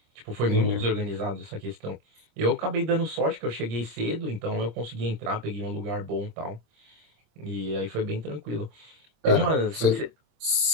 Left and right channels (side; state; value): left; late; 27 ms